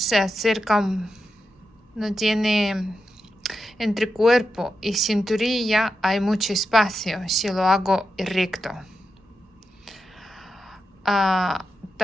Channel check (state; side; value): normal; both; correlation 0.88